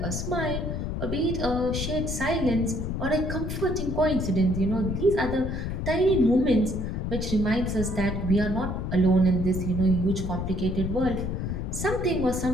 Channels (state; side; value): noise; left; rumble, 3 dB below the sound